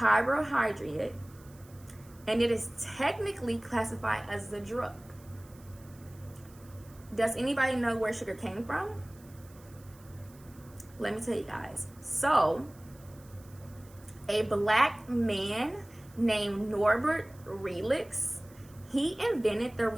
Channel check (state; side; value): noise; right; hiss, 25 dB below the sound